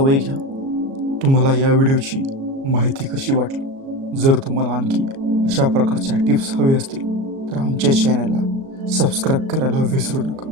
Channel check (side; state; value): left; late; 37 ms